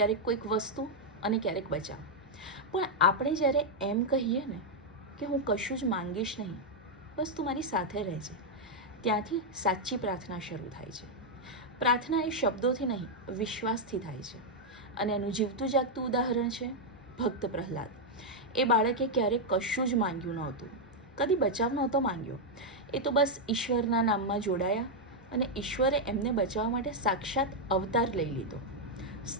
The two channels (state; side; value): normal; both; correlation -0.02